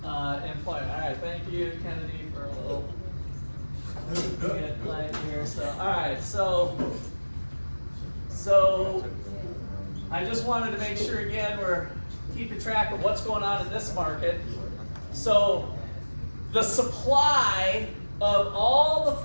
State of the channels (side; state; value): both; inverted; correlation -1.00